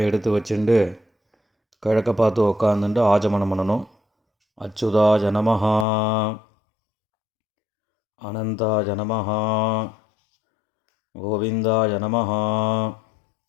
எடுத்து வச்சுட்டு கிழக்க பார்த்து உக்காந்துட்டு ஆஜமனம் பண்ணணும். அச்சுதாய நமஹ, அனந்தாய நமஹ, கோவிந்தாய நமஹ,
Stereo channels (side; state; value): right; drops out; at 5.9 s